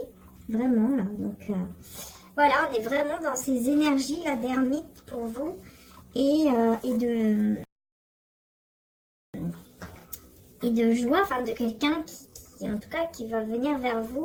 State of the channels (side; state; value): both; identical; correlation 1.00